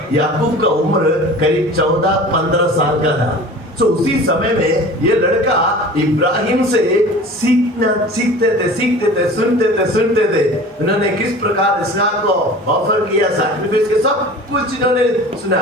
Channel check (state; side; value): normal; both; correlation 0.40